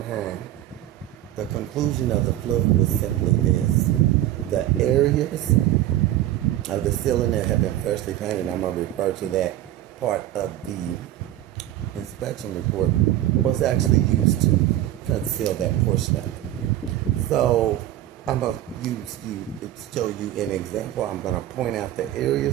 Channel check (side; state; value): left; quieter; 13.4 dB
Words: mind, the conclusion of the flood was simply this. The areas of the ceiling that have been freshly painted, I'm going to refer to that part of the inspection report, was actually used to conceal that portion of it. So I'm going to show you an example. I'm going to point out the